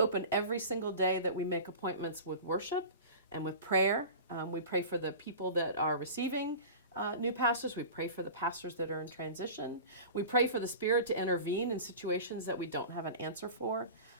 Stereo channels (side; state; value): both; inverted; correlation -0.35